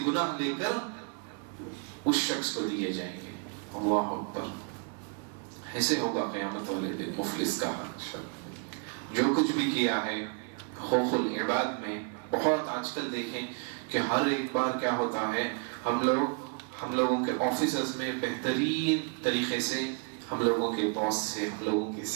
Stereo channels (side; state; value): left; quieter; 37.8 dB